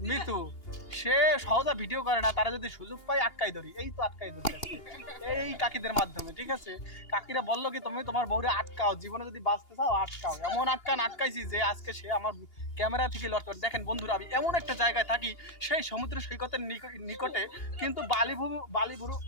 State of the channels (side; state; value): right; late; 2.8 ms